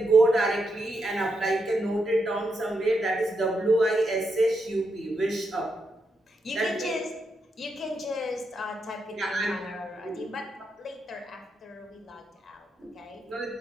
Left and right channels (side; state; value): both; normal; correlation 0.83